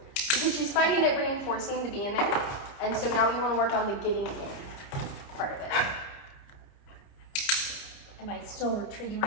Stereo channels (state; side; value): late; right; 30 ms